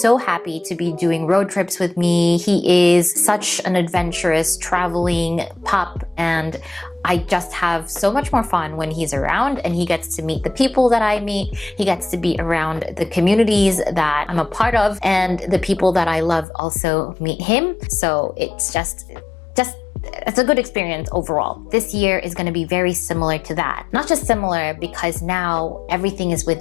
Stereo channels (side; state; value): right; drops out; at 16.4 s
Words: happy to be doing road trips with me. He is such an adventurous traveling pup. And I just have so much more fun when he's around and he gets to meet the people that I meet. He gets to be around the communities that I'm a part of, and the people that I love also meet him. So it's it's a good experience overall. This year is going to be very similar to that. Not just similar, because now everything is with